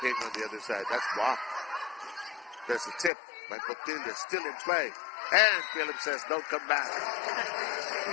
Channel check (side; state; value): right; drops out; at 3.1 s